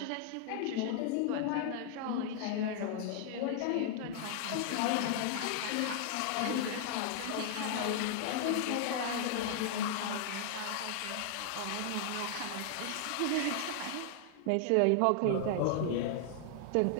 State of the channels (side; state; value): both; different; correlation 0.00